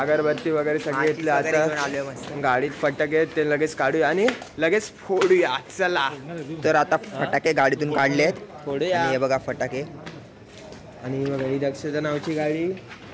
वगैरे सगळे घेतले. आता गाडीत फटाके ते लगेच काढूया आणि लगेच फोडूया. चला तर आता फटाके गाडीतून काढलेत. फोडूया. हे बघा फटाके. आणि बघा ही दक्षता नावची गाडी,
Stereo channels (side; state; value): both; identical; correlation 1.00